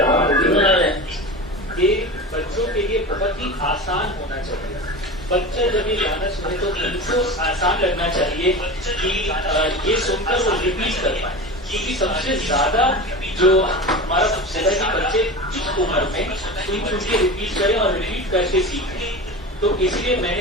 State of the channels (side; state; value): both; normal; correlation 0.29